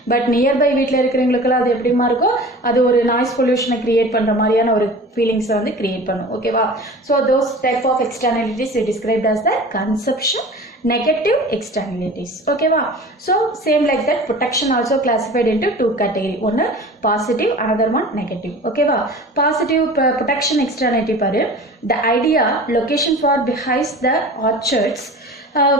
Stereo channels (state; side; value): normal; both; correlation 0.39